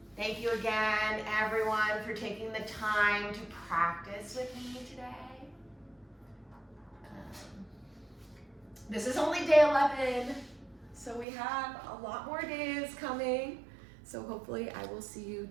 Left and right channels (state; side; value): drops out; left; at 11.2 s